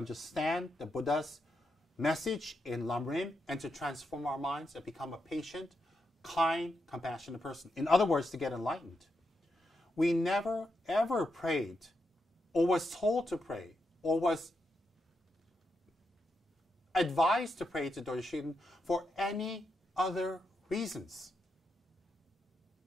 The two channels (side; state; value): both; normal; correlation 0.84